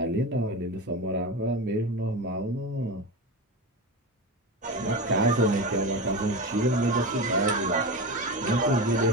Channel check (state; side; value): normal; both; correlation 0.23